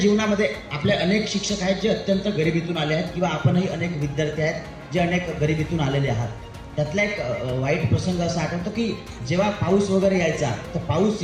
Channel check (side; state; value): both; identical; correlation 1.00